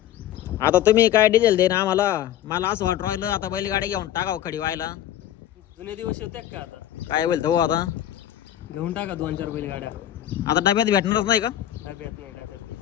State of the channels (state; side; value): quieter; right; 12.0 dB